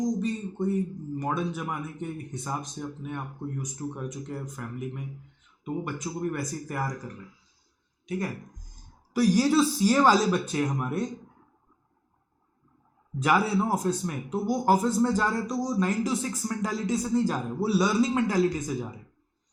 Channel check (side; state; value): both; identical; correlation 1.00